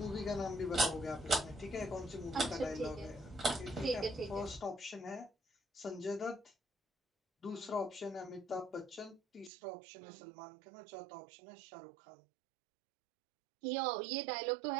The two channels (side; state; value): left; drops out; at 9.5 s